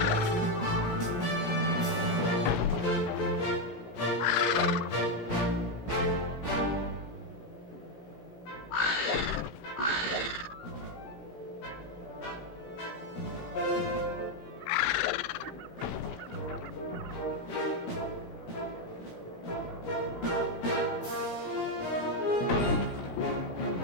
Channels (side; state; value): right; late; 16 ms